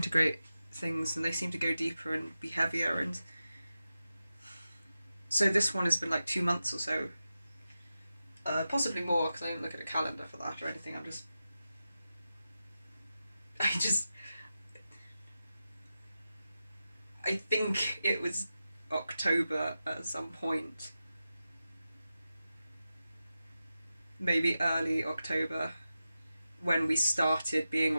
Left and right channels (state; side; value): inverted; both; correlation -0.92